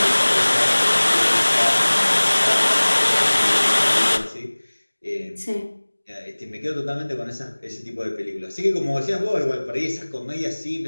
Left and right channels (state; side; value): inverted; both; correlation -1.00